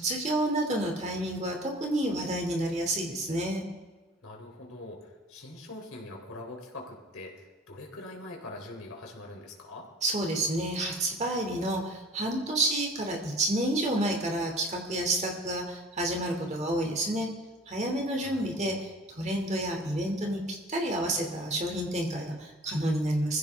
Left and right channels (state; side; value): normal; both; correlation 0.46